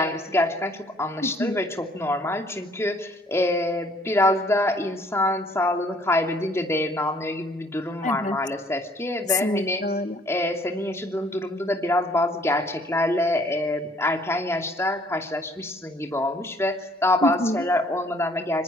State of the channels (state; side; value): normal; both; correlation 0.60